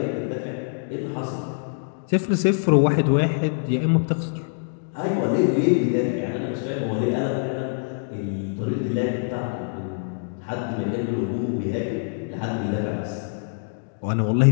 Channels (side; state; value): right; silent; digital silence